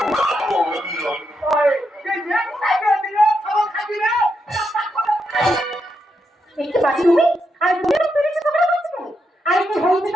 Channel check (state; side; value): normal; both; correlation 0.82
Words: একটু বাঁচি তুমি আর তুমি পেরেছো তোমরা বলছো কেন? আর কি